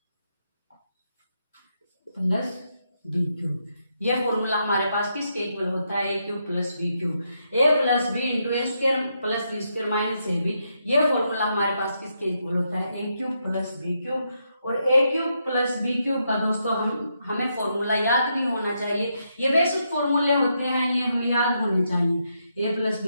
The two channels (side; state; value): both; inverted; correlation -0.80